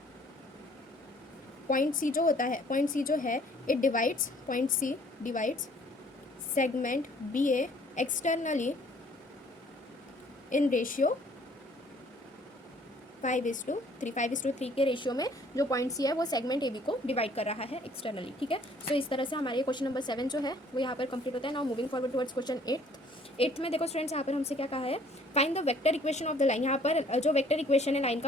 point C जो होता है, पॉइंट सी जो है it divides, point C divides segment B A externally in ratio 5:3, 5:3 के रेशियो में जो पॉइंट सी है वो सेगमेंट ए बी को डिवाइड कर रहा है एक्सटर्नली, ठीक है। सो इस तरह से हमारे क्वेश्चन नंबर 7 जो है वो यहाँ पर कंप्लीट होता है। Now moving forward towards question 8th में देखो स्टूडेंट्स, यहाँ पर हमसे क्या कहा है, find the vector equation of the line. यहाँ पर जो वेक्टर इक्वेशन है लाइन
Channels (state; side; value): normal; both; correlation 0.58